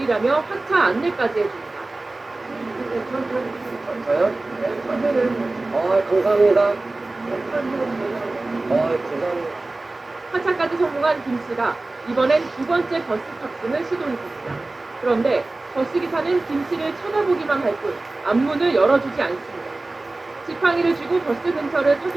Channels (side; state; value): left; quieter; 3.1 dB